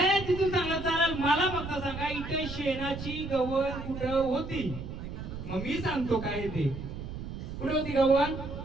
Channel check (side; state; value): right; noise; rumble, 8 dB below the sound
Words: तिथून सांगा चालेल, मला फक्त सांगा इथे शेणाची गव्हाण कुठं होती? मग मी सांगतो काय ते. कुठे होती गव्हाण?